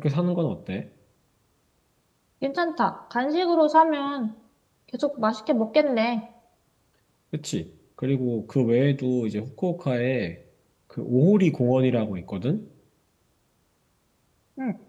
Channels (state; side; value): identical; both; correlation 1.00